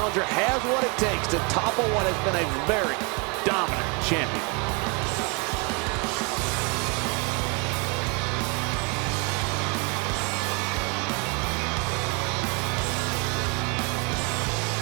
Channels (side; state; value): left; quieter; 31.7 dB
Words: has what it takes to topple what has been a very dominant champion.